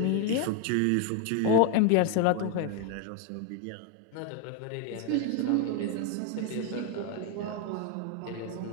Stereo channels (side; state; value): both; different; correlation 0.01